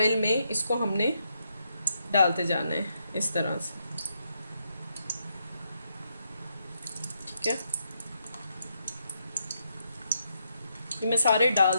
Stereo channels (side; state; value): both; inverted; correlation -0.79